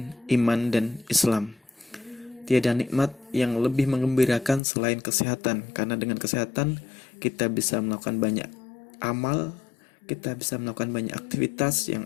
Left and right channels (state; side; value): drops out; right; at 4.6 s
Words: iman dan Islam. Tiada nikmat yang lebih menggembirakan selain kesehatan, karena dengan kesehatan kita bisa melakukan banyak amal, kita bisa melakukan banyak aktivitas